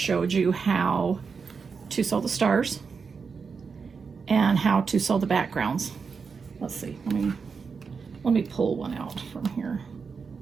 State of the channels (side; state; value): left; quieter; 5.4 dB